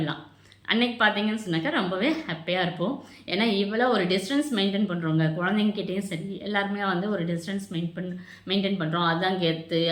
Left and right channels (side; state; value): both; identical; correlation 1.00